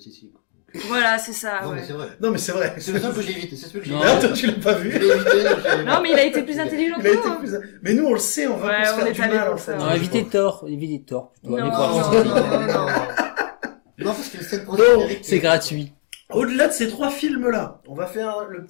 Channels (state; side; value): silent; right; digital silence